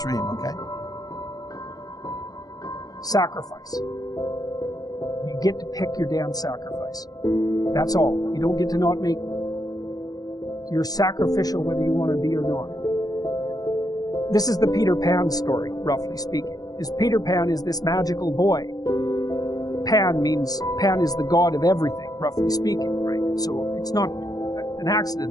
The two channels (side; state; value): right; late; 0.18 ms